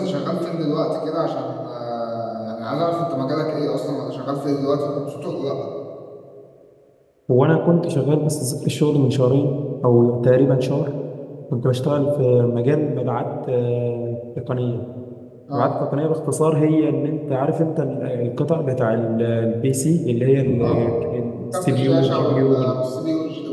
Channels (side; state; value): both; identical; correlation 1.00